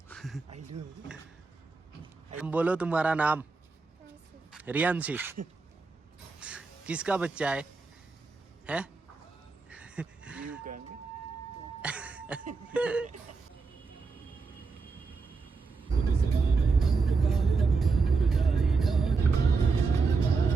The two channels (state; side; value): quieter; left; 4.4 dB